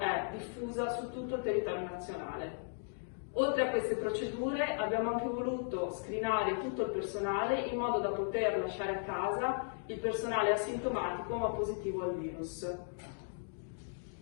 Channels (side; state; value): right; silent; digital silence